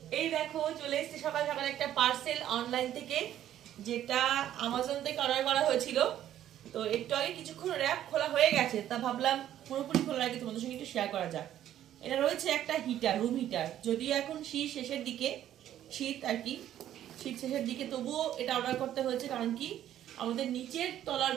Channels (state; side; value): quieter; left; 11.7 dB